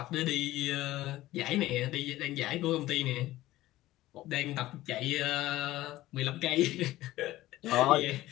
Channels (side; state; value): right; quieter; 16.3 dB